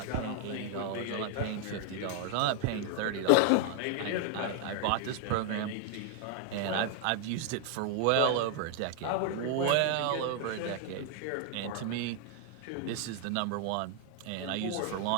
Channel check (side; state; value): both; different; correlation 0.00